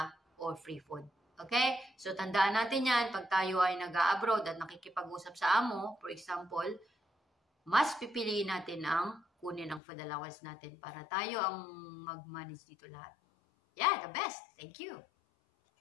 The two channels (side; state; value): right; drops out; at 9.8 s